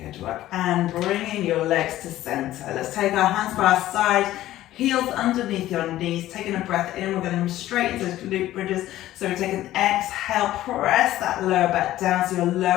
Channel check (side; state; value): right; quieter; 14.5 dB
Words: work. And bringing your legs to center. Let's take our hands by our side, heels underneath your knees. Taking a breath in, we're going to move straight into those glute bridges. So we take an exhale, press that lower back down so your